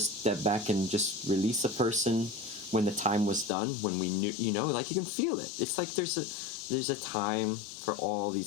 back and just release a person when the time was done, when we knew, you know, like you can feel it. It's like there's a time for all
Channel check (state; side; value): drops out; right; at 3.5 s